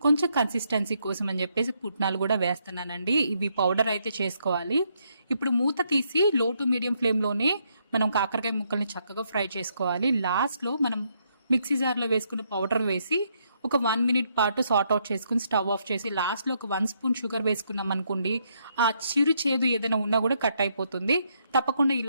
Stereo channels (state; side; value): inverted; both; correlation -0.75